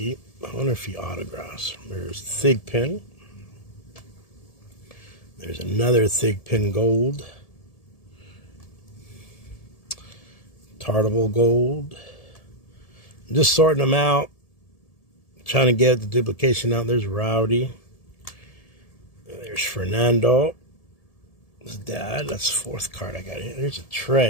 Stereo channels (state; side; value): late; right; 1.7 ms